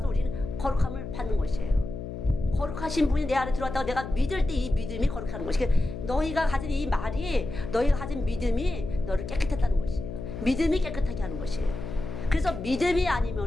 우리는 거룩함을 받는 것이에요. 거룩하신 분이 내 안에 들어왔다고 내가 믿을 때 이 믿음이 거룩하는 것이에요. 너희가 가진 이 말이 너희가 가진 믿음이 너를 깨끗했다는 것이에요. 믿음이 깨끗하게 하는 것이에요. 그래서 믿음이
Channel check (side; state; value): left; noise; hum, 8 dB below the sound